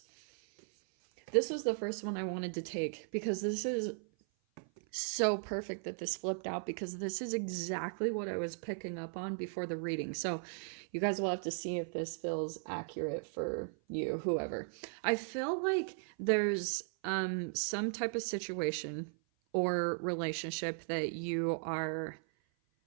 This was the first one I wanted to take because this is so perfect that this flipped out, because this is exactly what I was picking up on before the reading. So you guys will have to see if this feels accurate for you, whoever. I feel like there's some type of situation or relationship that you are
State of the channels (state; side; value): silent; left; 53 dB below the other